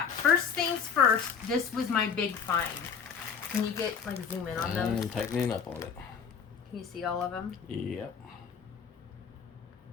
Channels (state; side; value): quieter; right; 6.6 dB